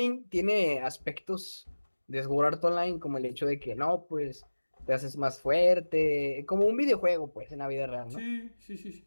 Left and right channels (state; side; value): inverted; both; correlation -1.00